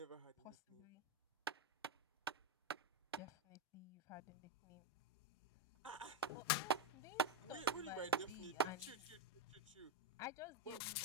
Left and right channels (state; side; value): normal; both; correlation 0.05